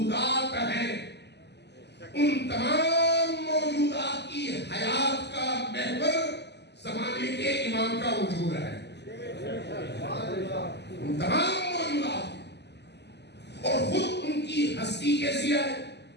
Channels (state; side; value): late; right; 0.50 ms